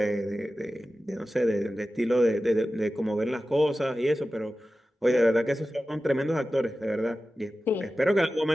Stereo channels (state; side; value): normal; both; correlation 0.94